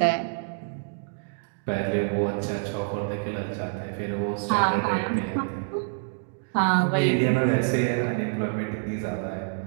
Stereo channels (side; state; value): left; silent; digital silence